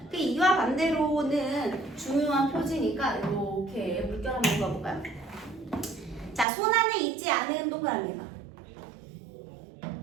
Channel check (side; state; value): left; drops out; at 6.5 s